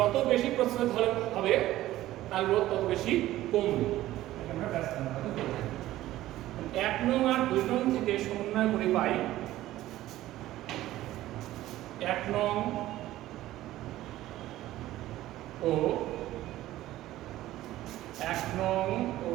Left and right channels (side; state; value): left; quieter; 15.1 dB